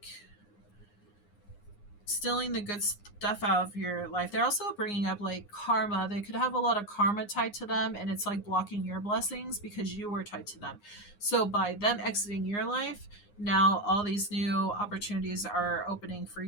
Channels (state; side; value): late; right; 9.7 ms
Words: the good stuff out of your life. They're also bringing up like karma. They could have a lot of karma tied to them, and it's like blocking your blessings because you were tied to them. So by them exiting your life, now all these new opportunities are opening for